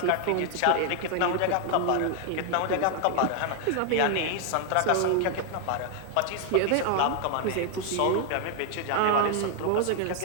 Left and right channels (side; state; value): both; different; correlation 0.00